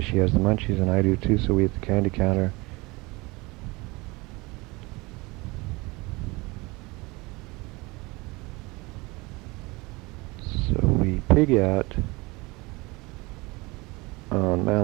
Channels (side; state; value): left; quieter; 24.2 dB